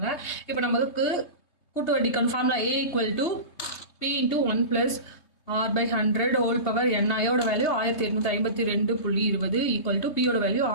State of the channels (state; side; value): late; right; 3.2 ms